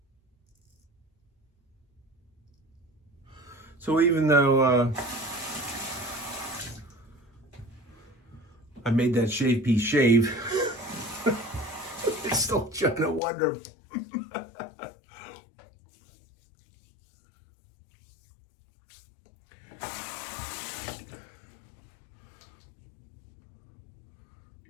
So even though I made that shave piece shave, it's still trying to wonder.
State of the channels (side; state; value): right; drops out; at 13.2 s